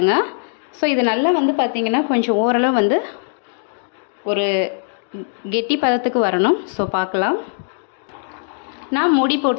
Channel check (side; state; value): right; silent; digital silence